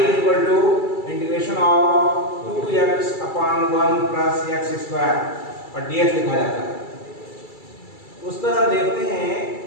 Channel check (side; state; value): right; late; 2.3 ms